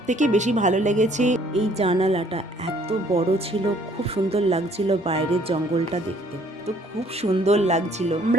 থেকে বেশি ভালো লেগেছে এই জানালাটা। এত বড় ছিল, খুব সুন্দর লাগছিল বাইরের জঙ্গলটা দেখতে, তো খুব সুন্দর লাগছিল।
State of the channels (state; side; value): normal; both; correlation 0.60